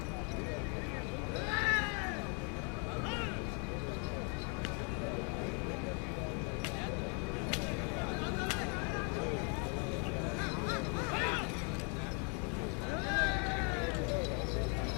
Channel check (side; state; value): right; quieter; 38.0 dB